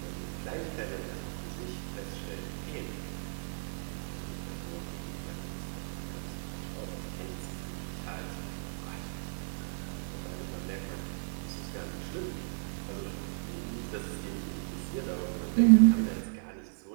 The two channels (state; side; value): silent; left; 55 dB below the other